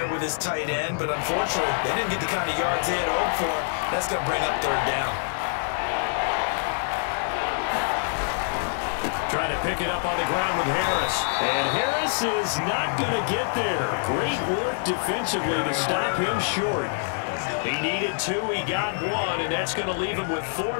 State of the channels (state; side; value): silent; right; digital silence